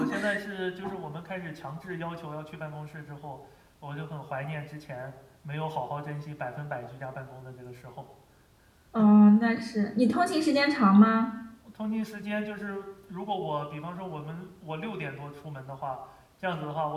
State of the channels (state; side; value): identical; both; correlation 1.00